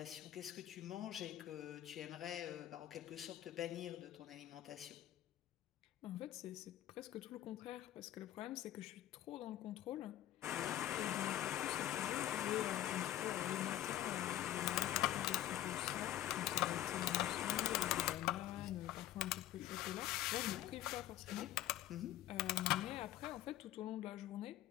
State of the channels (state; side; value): quieter; right; 13.3 dB